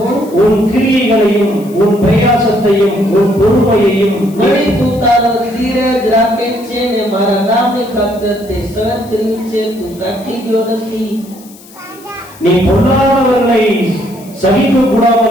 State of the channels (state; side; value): noise; left; hiss, 22 dB below the sound